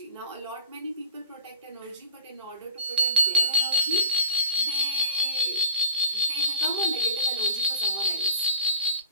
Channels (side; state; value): both; inverted; correlation -0.44